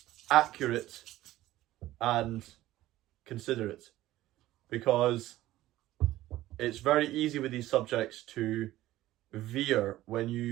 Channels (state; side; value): quieter; left; 15.4 dB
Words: accurate, and considerate. Because it's very easy with these subjects to veer when